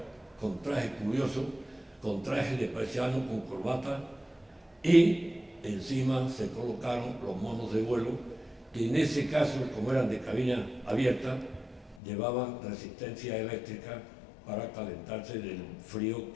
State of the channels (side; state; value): right; drops out; at 12.0 s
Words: con trajes curiosos, con trajes de paisano, con corbata, y encima se colocaron los monos de vuelo, que en ese caso, como eran de cabina abierta, llevaban resistencia eléctrica para calentarse del frío